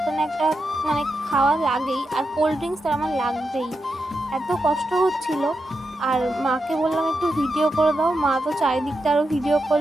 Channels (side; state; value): both; normal; correlation 0.87